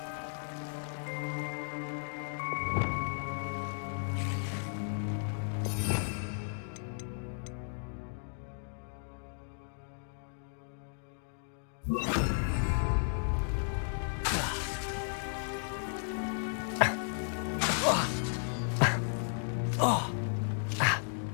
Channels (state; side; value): silent; right; digital silence